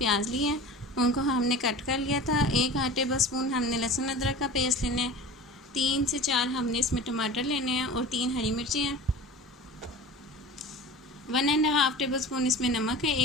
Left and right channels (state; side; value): normal; both; correlation 0.37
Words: लिए हैं, उनको हमने कट कर लिया था। 1 टेबल स्पून हमने लहसुन अदरक का पेस्ट लेना है। 3 से 4 हमने इसमें टमाटर लेने हैं और 3 हरी मिर्ची हैं। 1.5 टेबल स्पून इसमें नमक है।